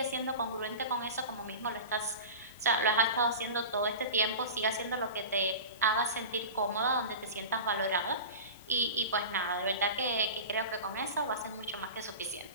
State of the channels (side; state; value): both; inverted; correlation -0.31